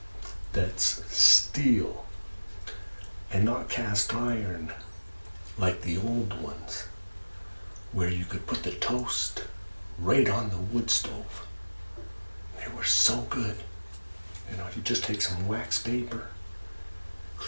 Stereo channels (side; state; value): both; inverted; correlation -1.00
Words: that's steel and not cast iron like the old ones, where you could put the toast right on the wood stove. They were so good. You know, you just take some wax paper,